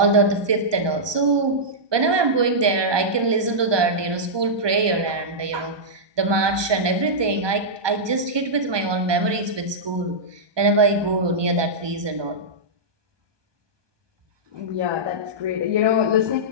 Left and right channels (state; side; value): late; left; 1.2 ms